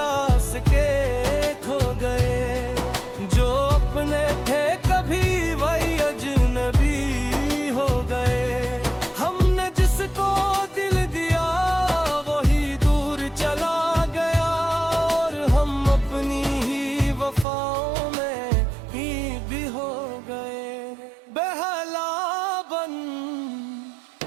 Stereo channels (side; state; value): left; drops out; at 17.4 s